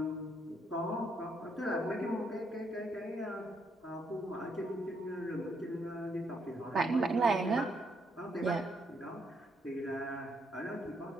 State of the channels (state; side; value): normal; both; correlation 0.74